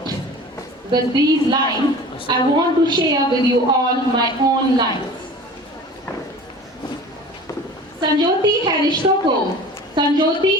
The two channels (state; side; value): normal; both; correlation 0.40